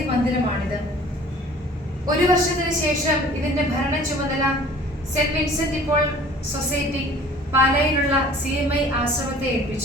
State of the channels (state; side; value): normal; both; correlation 0.49